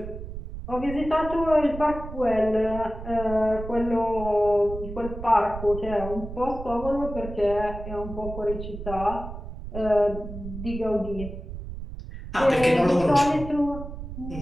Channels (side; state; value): right; noise; rumble, 10 dB below the sound